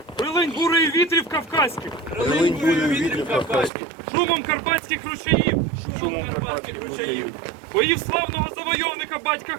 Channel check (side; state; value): left; drops out; at 3.7 s